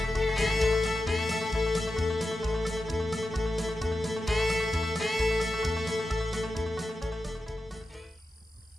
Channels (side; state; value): both; normal; correlation 0.91